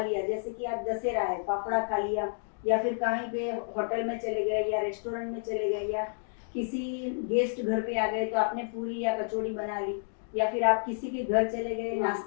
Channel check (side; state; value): right; silent; digital silence